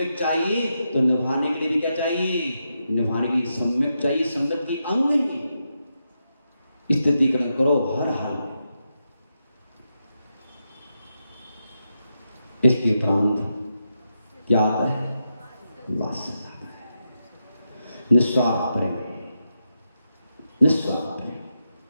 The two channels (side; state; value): both; inverted; correlation -0.86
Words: चाहिए, तो निभाने के लिए भी क्या चाहिए? निभाने के लिए सम्यक चाहिए, सम्यक की अंग नहीं। स्थितिकरण करो हर हाल में। इसके उपरांत क्या आता है? वात्सल्य आता है, निस्वार्थ प्रेम, निस्वार्थ प्रेम।